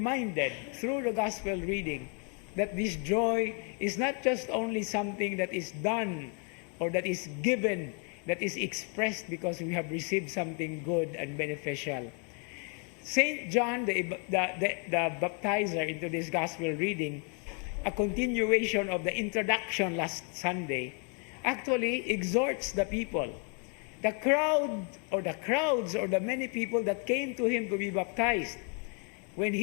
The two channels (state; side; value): quieter; right; 39.2 dB